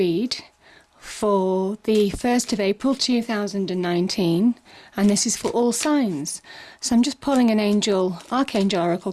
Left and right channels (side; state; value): both; identical; correlation 1.00